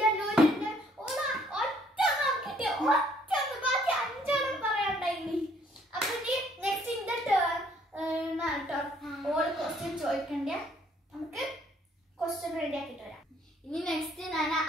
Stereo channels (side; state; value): both; normal; correlation 0.64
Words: ചോദിക്കണ്ടേ. നമുക്ക് ക്വസ്റ്റ്യൻ റെഡി ആക്കിട്ട് വരാം. ഇനി നെക്സ്റ്റ് ഞാൻ